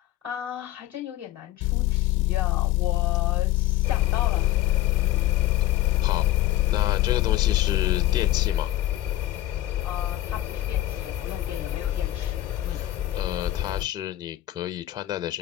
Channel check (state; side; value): quieter; right; 15.4 dB